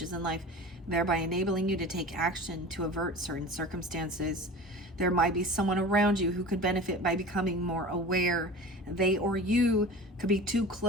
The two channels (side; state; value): both; normal; correlation 0.36